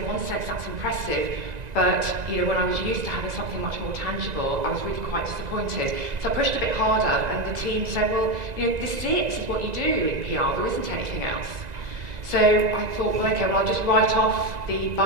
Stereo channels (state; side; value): late; left; 1.9 ms